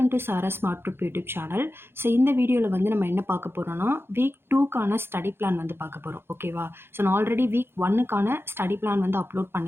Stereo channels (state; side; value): late; left; 0.11 ms